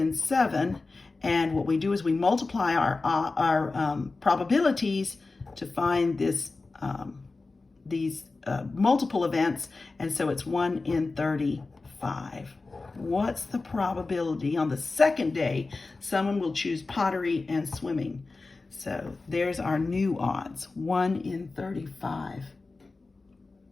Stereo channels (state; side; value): quieter; right; 3.7 dB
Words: 7, and what we do is we multiply our probabilities to find these multiple events, and so it's 1 in 35. What's the probability on the second day someone will choose pottery and swimming? So there's our new odds, 1 in 35.